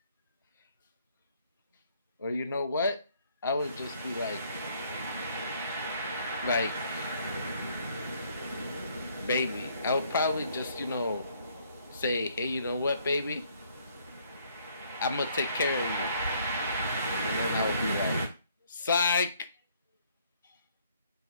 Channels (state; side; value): inverted; both; correlation -0.65